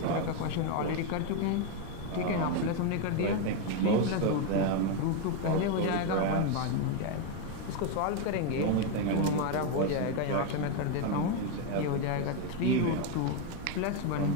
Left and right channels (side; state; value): both; different; correlation 0.02